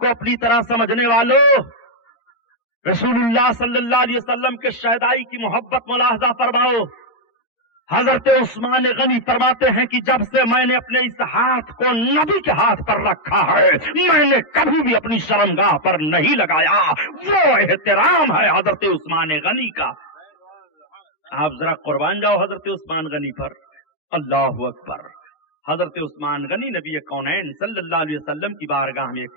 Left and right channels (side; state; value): right; late; 13 ms